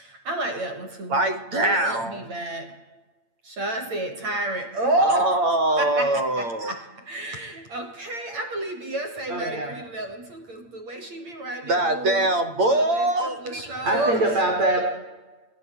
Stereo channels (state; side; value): late; left; 8.8 ms